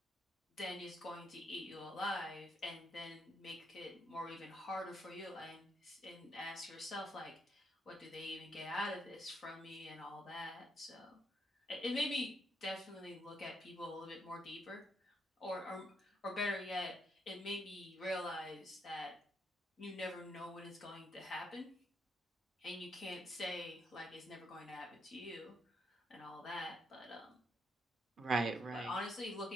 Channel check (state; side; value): normal; both; correlation 0.76